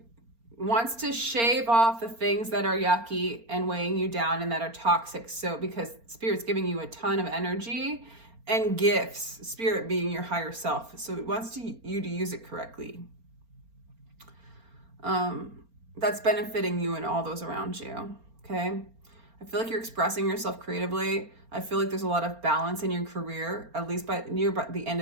wants to shave off the things that are yucky and weighing you down and that are toxic. So because Spirit's giving you a ton of energy and gifts, Spirit being your higher self. So it wants you to use it correctly. That's benefiting you and all those around you. Okay. I feel like you're expressing yourself creatively. I feel like there's a lot of balance in your career, at least by the end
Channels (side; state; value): left; late; 4.3 ms